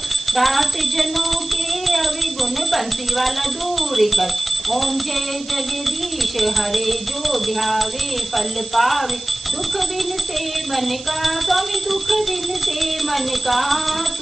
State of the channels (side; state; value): right; noise; hiss, 15 dB below the sound